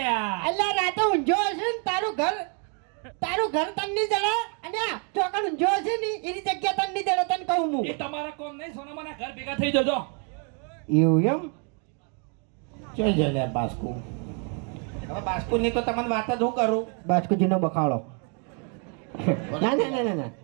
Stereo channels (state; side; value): quieter; left; 39.0 dB